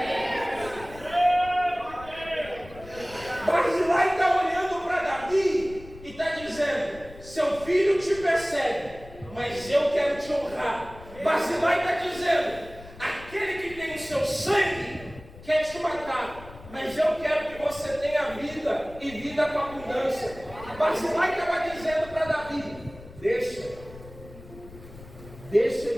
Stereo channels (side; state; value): left; noise; rumble, 18 dB below the sound